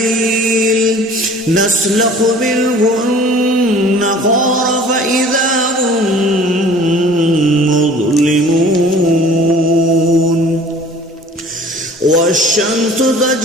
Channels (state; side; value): normal; both; correlation 0.48